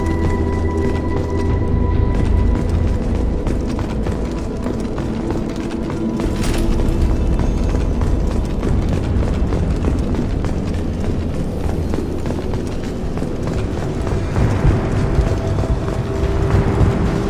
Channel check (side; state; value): both; identical; correlation 1.00